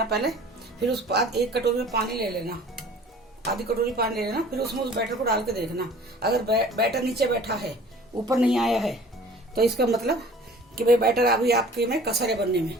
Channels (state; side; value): normal; both; correlation 0.48